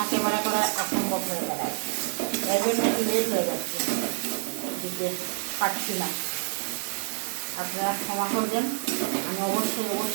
ক্যামেরা করা অসম্ভব হয়ে দাঁড়ায়, এর জন্য একটু লেট হয়ে যাচ্ছে, দিতে পারছি না, আপনারা ক্ষমা করবেন। আমি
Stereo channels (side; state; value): left; silent; digital silence